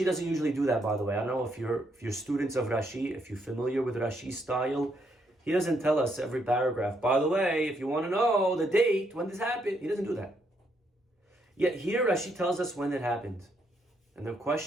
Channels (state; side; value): normal; both; correlation 0.75